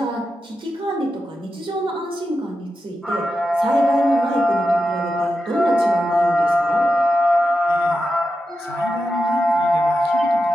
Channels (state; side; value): normal; both; correlation 0.90